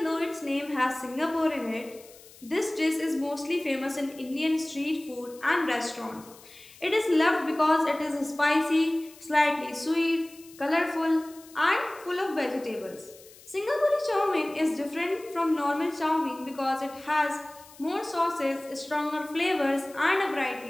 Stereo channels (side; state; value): left; noise; hiss, 22 dB below the sound